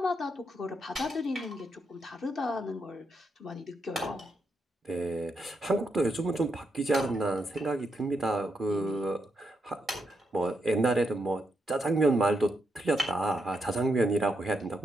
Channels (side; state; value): both; normal; correlation 0.81